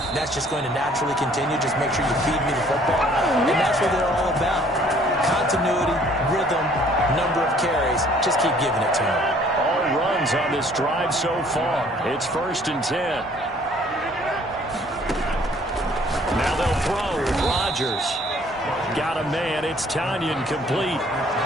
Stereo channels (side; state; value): both; normal; correlation 0.58